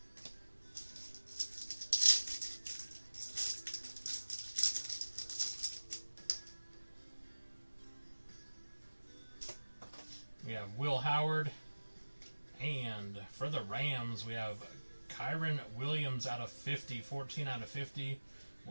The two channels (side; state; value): both; inverted; correlation -1.00